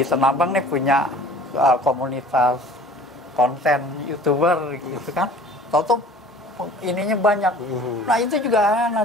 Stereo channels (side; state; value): both; normal; correlation 0.47